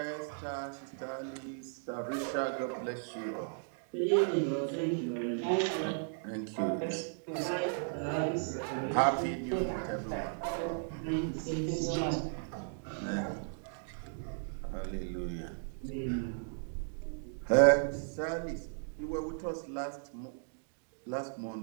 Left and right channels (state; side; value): silent; left; digital silence